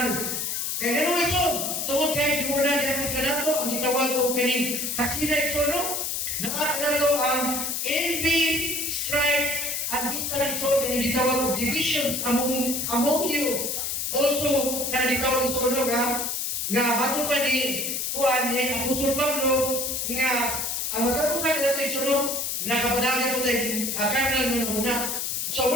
Kaya gano'n ito, tungod kayo muna di ako kanato, ang itawag ko kaning kasina ito, no? Nakakanalo ang envy, strife, at bisan ito, kaya itawag ko divisions among you. Also, kaya itawag ito, no, nga bago pa ni Juan, ni Apostol Pablo, nga ang matapusan na ito, no? Nakapadagan ko tayo, kanal mo na muna. So,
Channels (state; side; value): noise; left; hiss, 1 dB below the sound